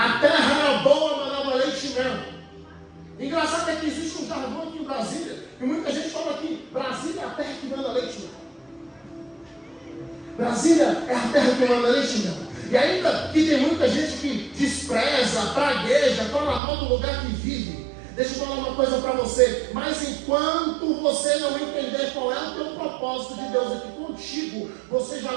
terra era boa, manava leite e mel. Engraçado é que existe jargão aqui em Brasília, e muita gente fala que Brasília é a terra que manda leite. Brasília é a terra que manda leite, não. E ainda que tem muita gente que despreza, pragueja, fala mal do lugar que vive. Deixa eu falar uma coisa para você. Mas enquanto você não entender qual é o teu propósito de Deus aqui contigo, você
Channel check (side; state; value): left; drops out; at 16.6 s